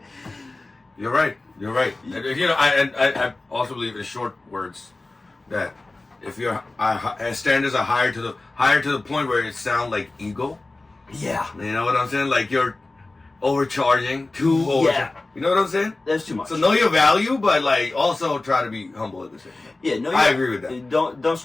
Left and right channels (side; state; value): right; quieter; 3.1 dB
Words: You're right. You're right. I also believe in short words that if your standards are higher to the point where it sounds like ego. Yeah. You know what I'm saying? Like you're overcharging, Yeah. You know what I'm saying? That's too much. So know your value, but like also try to be humble at the same time. Yeah, no, I agree with that. Don't